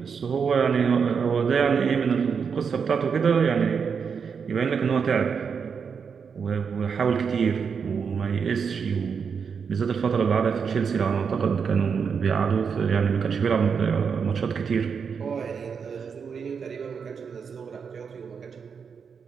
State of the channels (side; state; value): left; quieter; 6.2 dB